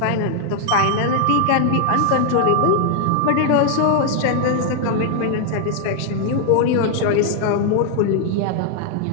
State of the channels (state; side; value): different; both; correlation 0.00